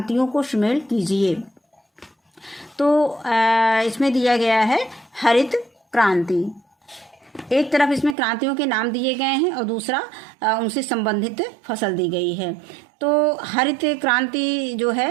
को शामिल कीजिए। तो इसमें दिया गया है हरित क्रांति। एक तरफ इसमें क्रांतियों के नाम दिए गए हैं और दूसरा उनसे संबंधित फसल दी गई है। तो हरित क्रांति जो है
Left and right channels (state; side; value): drops out; left; at 8.2 s